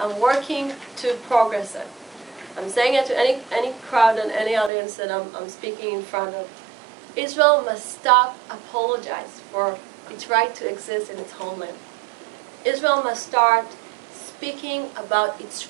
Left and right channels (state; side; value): drops out; left; at 4.7 s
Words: working to progress it. I'm saying it to any crowd and any audience that I'm speaking in front of. Israel must stop apologize for its right to exist in its homeland. Israel must start speaking about its